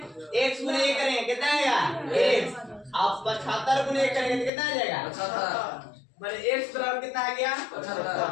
x गुने 1 करेंगे कितना आएगा, x, अब 75 गुने 1 करेंगे तो कितना आ जाएगा, 75, मतलब x बराबर कितना आ गया,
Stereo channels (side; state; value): right; drops out; at 4.5 s